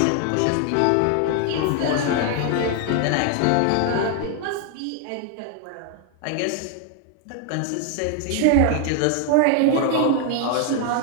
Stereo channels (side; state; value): both; different; correlation 0.00